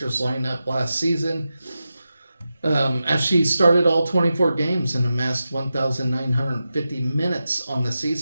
lineup last season, as she started all 24 games and amassed 1,950 minutes on the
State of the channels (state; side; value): inverted; both; correlation -0.91